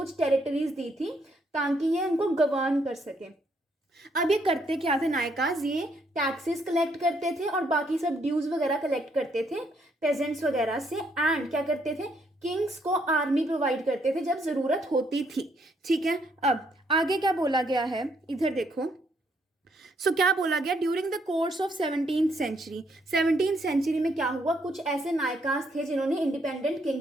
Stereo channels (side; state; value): both; normal; correlation 0.72